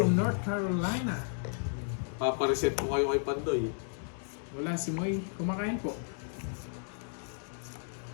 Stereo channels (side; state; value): right; silent; digital silence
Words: North Carolina. papa-reset mo kayo kay Pandoy. Wala si Moy. Kumakain po.